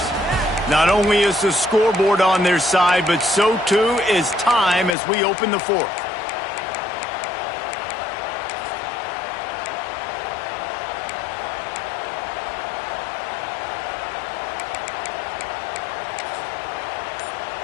Not only is the scoreboard on their side, but so too is time as we open the 4th.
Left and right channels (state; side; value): drops out; right; at 5.0 s